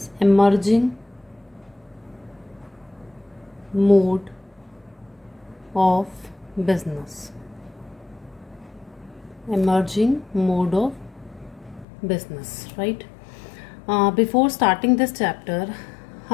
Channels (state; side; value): drops out; right; at 11.9 s